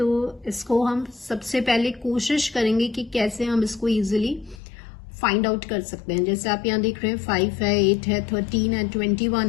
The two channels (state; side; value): drops out; right; at 4.6 s